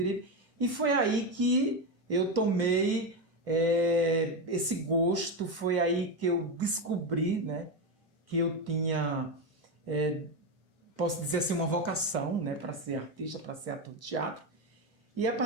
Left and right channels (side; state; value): both; normal; correlation 0.12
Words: E foi aí que eu tomei esse gosto, foi aí que eu descobri, que eu tinha, posso dizer assim, uma vocação, para ser artista, para ser ator de teatro. E a